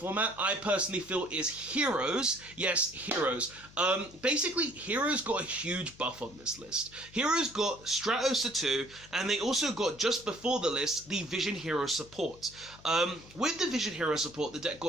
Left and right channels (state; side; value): normal; both; correlation 0.58